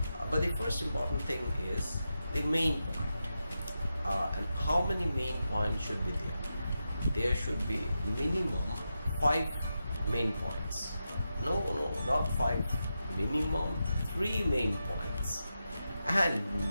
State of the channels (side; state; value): both; inverted; correlation -0.89